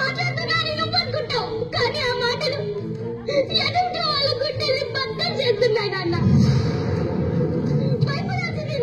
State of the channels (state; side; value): identical; both; correlation 1.00